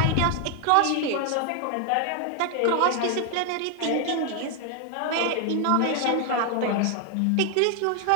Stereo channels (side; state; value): both; different; correlation 0.00